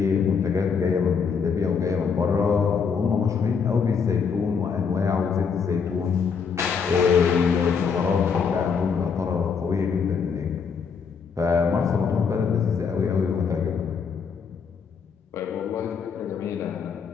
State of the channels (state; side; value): quieter; right; 6.0 dB